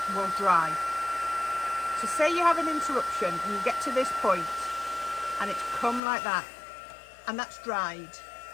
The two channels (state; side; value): drops out; right; at 6.0 s